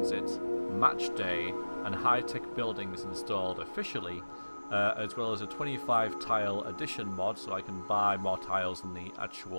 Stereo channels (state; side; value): inverted; both; correlation -1.00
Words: Match Day and high-tech buildings installed officially, as well as a 25 tile addition mod, so I can buy more tiles than the